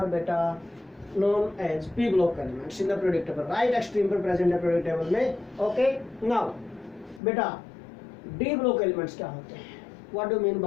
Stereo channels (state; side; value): drops out; right; at 7.2 s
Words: बेटा known as p block elements in the periodic table. Right extreme पर प्रेजेंट है पीरियोडिक टेबल में। ओके, नाउ बेटा डी ब्लॉक एलिमेंट्स क्या होते हैं? What do mean